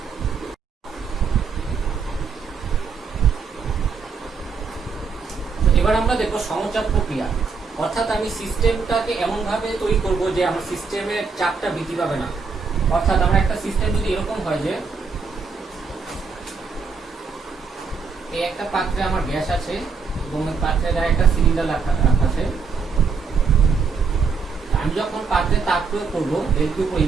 এবার আমরা দেখবো সমচাপ প্রক্রিয়া, অর্থাৎ আমি সিস্টেমটাকে এমন ভাবে তৈরি করব যে আমার সিস্টেমের চাপটা বৃদ্ধি পাবে না। অর্থাৎ আমার একটা সিস্টেম যদি এরকম হয় যে এই একটা পাত্রে আমার গ্যাস আছে এবং এই পাত্রের গায়ে একটা সিলিন্ডার রাখা আছে, আমি যখন পাত্রে তাপ প্রয়োগ করবো ডেলকিউ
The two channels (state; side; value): quieter; left; 5.2 dB